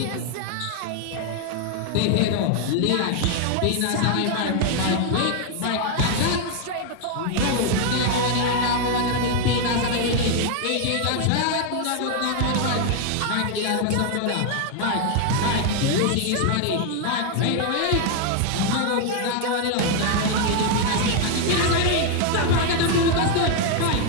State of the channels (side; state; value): both; different; correlation 0.00